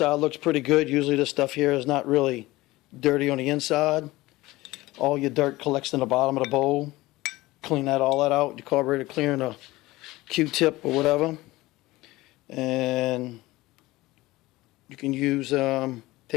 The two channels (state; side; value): quieter; right; 19.2 dB